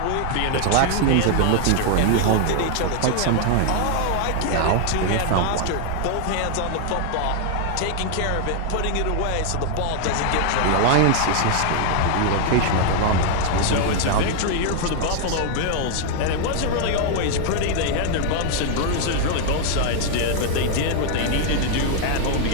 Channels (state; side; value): different; both; correlation 0.00